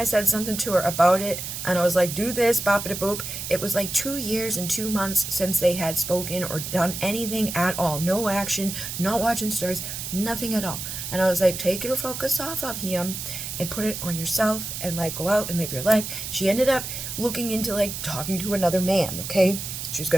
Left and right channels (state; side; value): noise; right; hiss, 6 dB below the sound